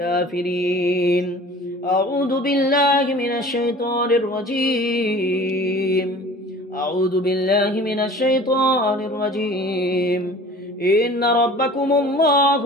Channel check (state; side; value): normal; both; correlation 0.44